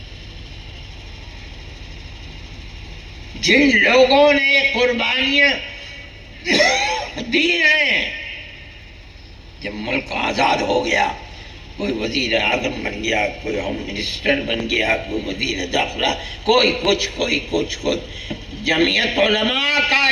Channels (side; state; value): both; identical; correlation 1.00